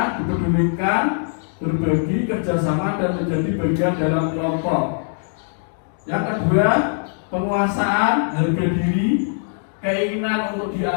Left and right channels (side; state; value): right; silent; digital silence